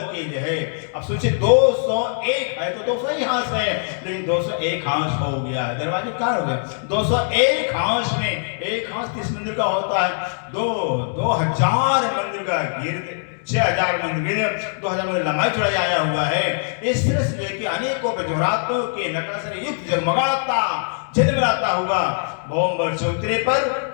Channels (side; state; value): right; silent; digital silence